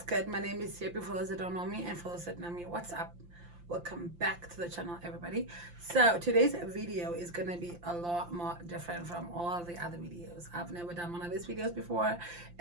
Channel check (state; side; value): late; left; 5.8 ms